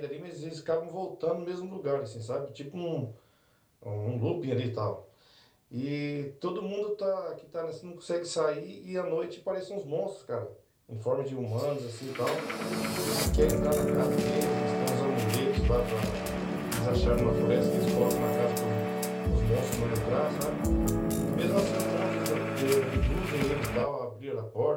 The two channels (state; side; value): identical; both; correlation 1.00